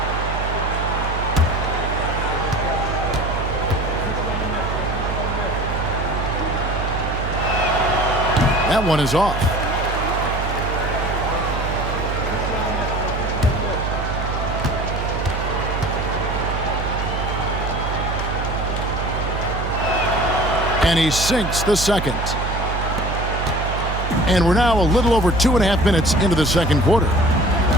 That one is off. And he sinks the second. And we're now a little over 2.5 minutes into the second quarter.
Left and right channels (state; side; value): noise; right; hum, 3 dB below the sound